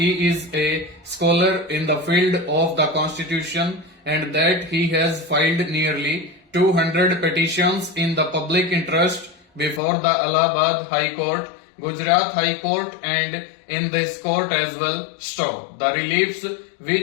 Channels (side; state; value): right; drops out; at 9.8 s